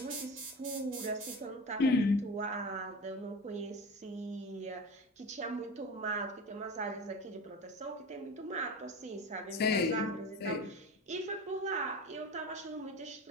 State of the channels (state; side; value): normal; both; correlation 0.30